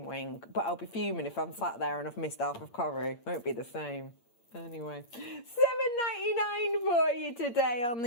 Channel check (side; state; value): right; late; 8.6 ms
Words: wing, but I'll be fuming if I'm sat there and I've missed half of curry. Won't be the same. Anyway, $7.99 for you today on